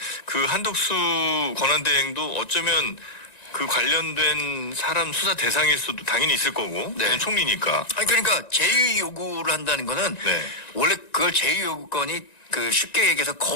그 한덕수 권한대행도 어쩌면 그 관련된 사람 수사 대상일 수도 당연히 있을 거고, 네. 그냥 총리니까. 아니 그러니까 제의 요구를 한다는 거는 네. 원래 그걸 제의 요구권이 그 쉽게 얘기해서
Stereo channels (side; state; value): right; late; 1.9 ms